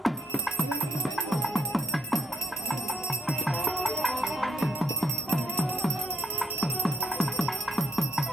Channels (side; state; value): both; normal; correlation 0.71